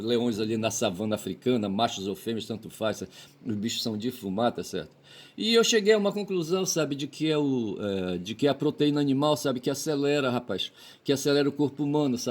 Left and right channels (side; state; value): both; identical; correlation 1.00